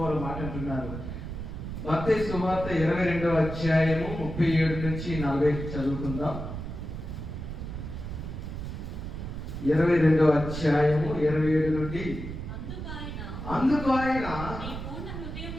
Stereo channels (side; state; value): right; noise; rumble, 7 dB below the sound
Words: వారు మాట అంటున్నారు. మత్తయి సువార్త 22వ అధ్యాయము 37 నుంచి 40 చదువుకుందాం. 22వ అధ్యాయము 27 నుండి. అందుకు ఆయన